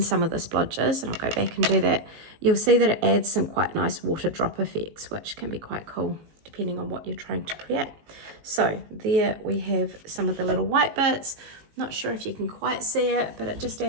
some of the splodges, and I'll go back and do that. You'll see that it adds some quite nice water drop effects, which can be quite cool depending on what you're trying to create. So there we have some of the little white bits. Not sure if you can quite see it, but it just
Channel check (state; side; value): late; left; 18 ms